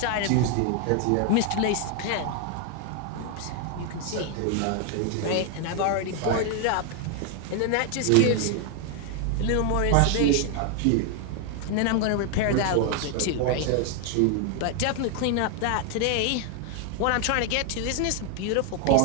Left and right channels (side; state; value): both; different; correlation 0.00